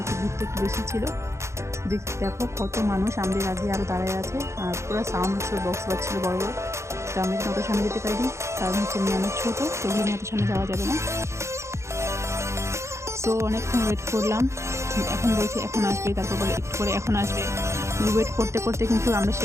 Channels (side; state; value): left; late; 0.14 ms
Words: একটু ভিড়টা একটু বেশি ছিল। দেখো কত মানুষ আমাদের আগে আরও দাঁড়ায় আছে, আর পুরো সাউন্ড হচ্ছিল, বক্স বাজছিল বড় বড়। তো আমি কিন্তু অত সামনে যেতে পারিনি, কারণ হচ্ছে মেয়ে অনেক ছোটো, তো ওখানে অত সামনে যাওয়া যাবে না। সো অনেকক্ষণ ওয়েট করলাম। এখন বলছে এখন আসবে, তারপর বলে একটু করে এখন আসবে। ওয়েট করতে করতে কিন্তু আমরা